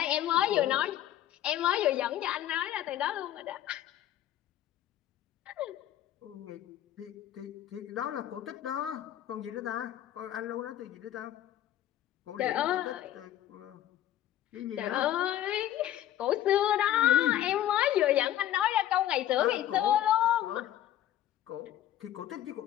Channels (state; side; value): quieter; right; 12.3 dB